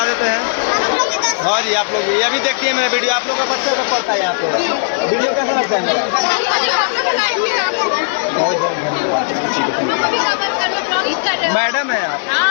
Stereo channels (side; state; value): right; silent; 69 dB below the other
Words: देते हैं। हाँ जी, आप लोग ये अभी देखते हैं मेरा वीडियो। आप लोग का बच्चा सब पढ़ता है यहाँ पे। वीडियो कैसा लगता है मेरा? बहुत बहुत धन्यवाद। मैडम है आप?